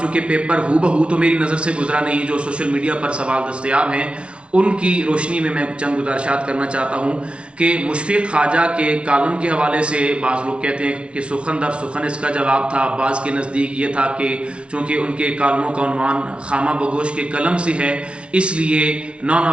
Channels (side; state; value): left; late; 0.059 ms